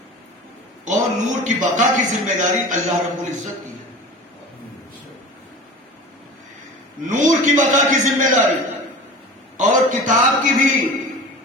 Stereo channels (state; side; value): normal; both; correlation 0.36